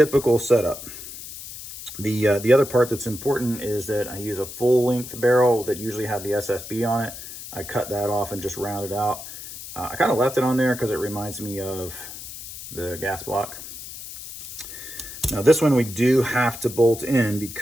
setup. The other part that's important is that I use a full length barrel that usually had the SSB on it. I cut that off and just rounded out. I kind of left it on there because it reminds me of the gas block. Now this one we do have to bolt in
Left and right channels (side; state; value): left; noise; hiss, 12 dB below the sound